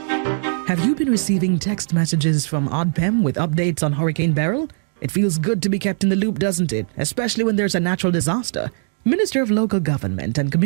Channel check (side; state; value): left; silent; 66 dB below the other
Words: Have you been receiving text messages from ODPEM with updates on Hurricane Beryl? It feels good to be kept in the loop, doesn't it? Especially when there's a natural disaster. Minister of Local Government and